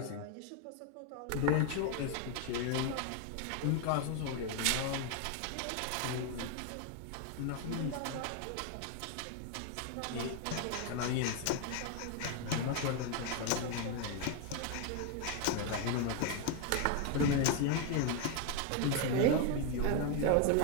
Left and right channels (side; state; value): both; different; correlation 0.01